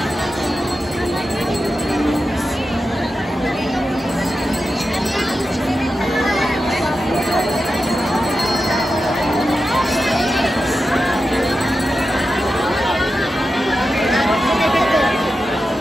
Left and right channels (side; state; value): both; normal; correlation 0.90